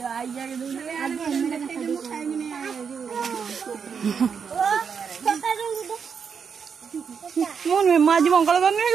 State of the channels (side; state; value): left; quieter; 6.5 dB